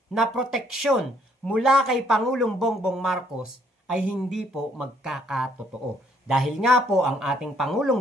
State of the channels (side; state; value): both; normal; correlation 0.67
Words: na proteksyon mula kay Pangulong Bongbong Marcos ay hindi po magkakatotoo. Dahil nga po ang ating